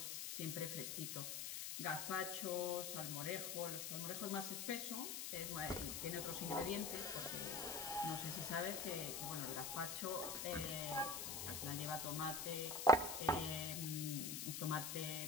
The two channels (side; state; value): left; noise; hiss, 3 dB below the sound